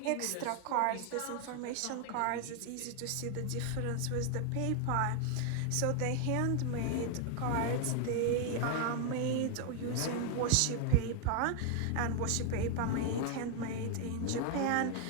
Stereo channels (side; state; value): both; different; correlation 0.00